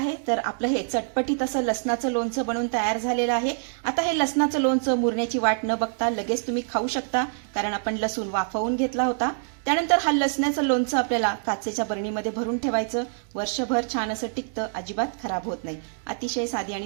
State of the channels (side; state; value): left; silent; digital silence